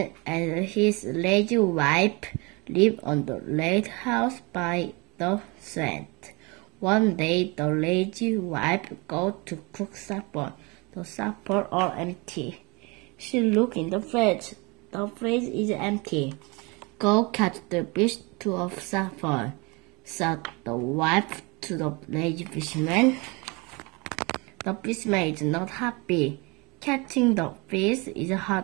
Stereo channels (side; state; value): left; quieter; 27.9 dB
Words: and his lazy wife live on the lighthouse by the sand. One day the lazy wife goes to cook supper. The supper all empty. She look in the fridge. The fridge is empty. Go catch the fish to a supper, said the wife to the lazy fisherman. The fisherman is not happy. Catching the fish is